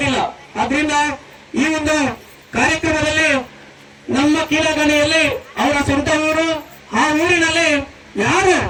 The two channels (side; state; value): both; identical; correlation 1.00